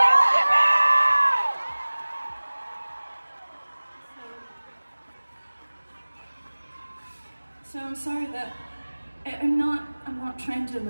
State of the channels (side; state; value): both; inverted; correlation -1.00